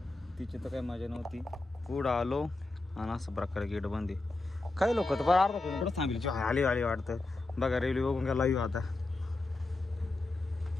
तिची तर काही मजा नव्हती. पुढं आलो आणि असं प्रकारे गेट बंदी. काही लोक तर बरं अर्धा किलोमीटर थांबली आली आली वाटतं. बघा रेल्वे बघून गेला येऊ आता.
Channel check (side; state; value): right; quieter; 3.1 dB